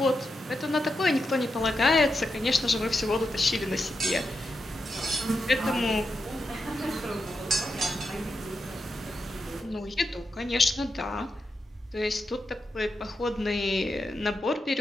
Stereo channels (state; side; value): normal; both; correlation 0.86